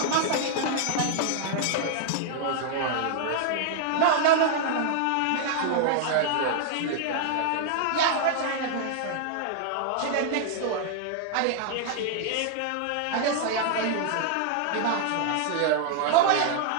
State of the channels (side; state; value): both; different; correlation -0.01